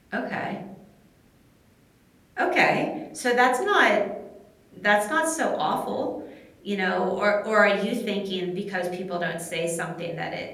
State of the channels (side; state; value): both; identical; correlation 1.00